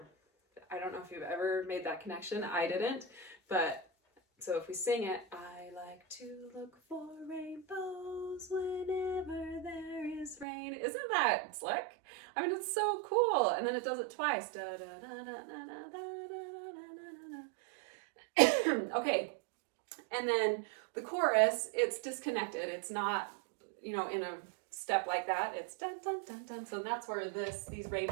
I don't know if you've ever made that connection. I didn't. But so if we sing it, I like to look for rainbows whenever there is rain. Isn't that slick? I mean, it's so cool. And then it does it twice. Da, da, da, da, da, da, da, da, da. Okay. And then the chorus, it's disconnected. It's not, in a step like that. It's dun, dun, dun, dun. So that's where these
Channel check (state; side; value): drops out; left; at 10.5 s